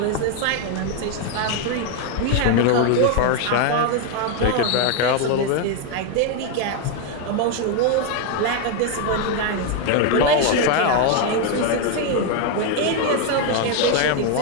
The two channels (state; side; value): different; both; correlation 0.01